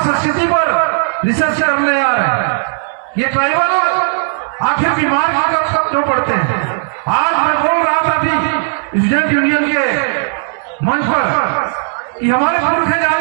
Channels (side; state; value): left; silent; digital silence